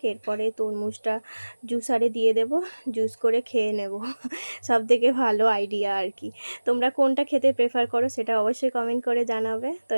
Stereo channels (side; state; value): both; inverted; correlation -1.00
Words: এরপরে তরমুজটা জুসারে দিয়ে দেব, জুস করে খেয়ে নেব। সব থেকে ভালো আইডিয়া আর কি। তোমরা কোনটা খেতে প্রেফার করো সেটা অবশ্যই কমেন্ট করে জানাবে। তো